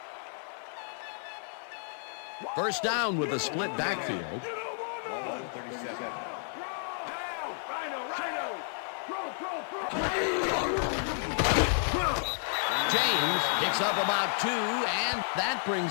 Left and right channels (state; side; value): silent; right; 55 dB below the other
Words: First down with a split backfield. Ball 37. James picks up about 2, and that